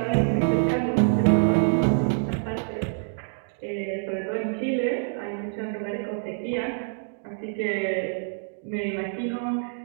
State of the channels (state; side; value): silent; left; digital silence